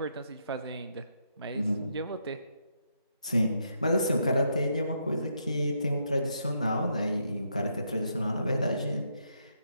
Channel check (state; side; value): inverted; both; correlation -0.78